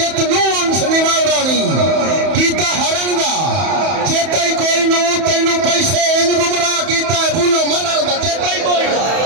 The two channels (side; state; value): left; late; 31 ms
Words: नु उनस निवावरानी कीता हरन दा चेता ही कोई नु तैनू पैसे इंज गुमराह कीता है भूलो मरण दा चेता ही कोई